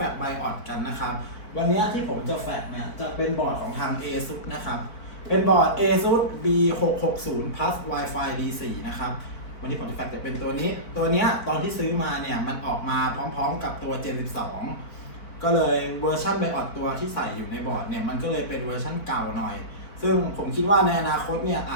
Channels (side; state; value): right; late; 4.7 ms